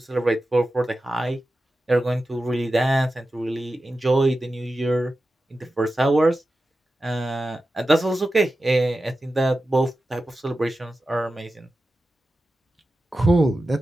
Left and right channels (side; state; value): both; normal; correlation 0.93